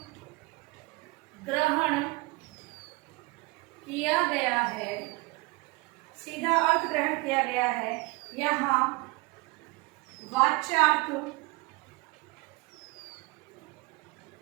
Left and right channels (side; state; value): left; quieter; 24.6 dB